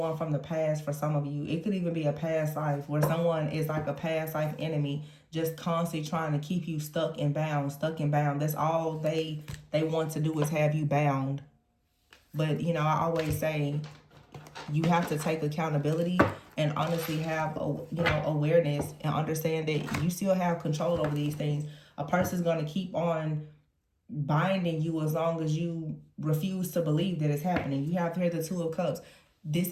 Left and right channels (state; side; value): identical; both; correlation 1.00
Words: from the past for some of you. It could even be a past life where someone is like a past life enemy, just constantly trying to keep you stuck and bound, stuck and bound. That's all they want to do is have you bound. But, you know, I always say you have to take accountability and honestly have, awareness and understand that you still have control over these things. A person's going to keep on binding you as long as you refuse to believe that it's happening. You have here the Two of Cups.